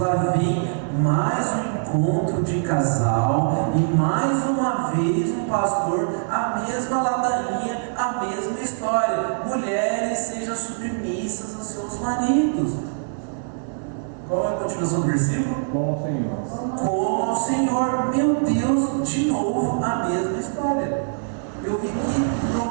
vem mais um encontro de casal e mais uma vez um pastor, a mesma ladainha, a mesma história. Mulheres sejam submissas aos seus maridos. Qual é a continuação do versículo? Como ao Senhor. Como ao Senhor. Meu Deus, de novo a mesma história. Eu vim aqui para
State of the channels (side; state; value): left; silent; 57 dB below the other